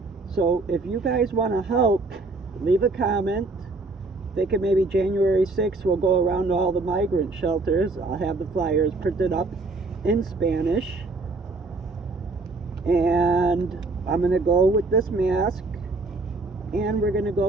So if you guys want to help, leave a comment. Thinking maybe January 6th we'll go around to all the migrant shelters. I'll have the flyers printed up in Spanish. And I'm going to go with this mask. And we're going to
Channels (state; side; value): quieter; left; 3.5 dB